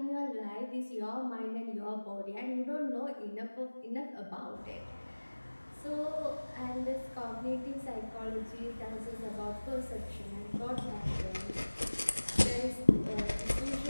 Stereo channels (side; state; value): both; inverted; correlation -1.00